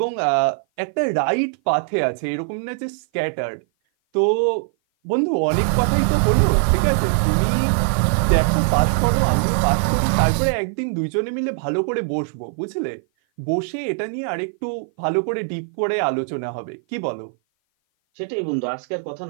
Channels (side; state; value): left; silent; 56 dB below the other